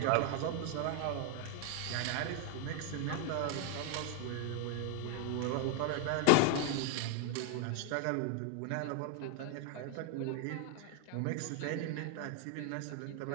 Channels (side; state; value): both; different; correlation 0.01